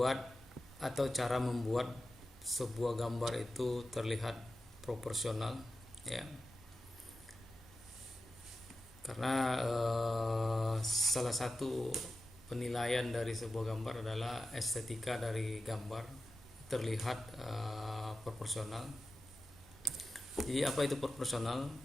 atau cara membuat sebuah gambar itu terlihat proporsional, ya. Karena salah satu penilaian dari sebuah gambar adalah estetika dari gambar terlihat proporsional. Jadi apa itu proporsional?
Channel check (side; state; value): both; normal; correlation 0.92